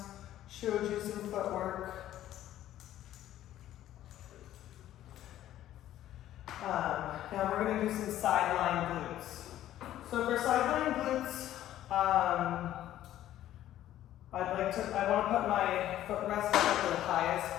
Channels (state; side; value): quieter; right; 12.8 dB